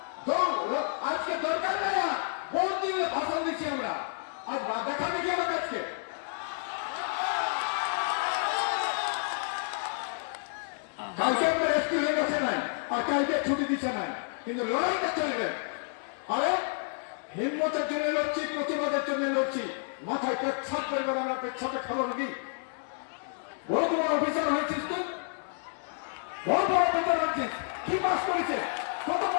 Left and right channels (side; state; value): right; silent; 58 dB below the other